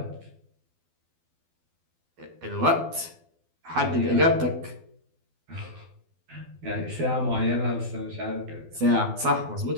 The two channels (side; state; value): left; late; 12 ms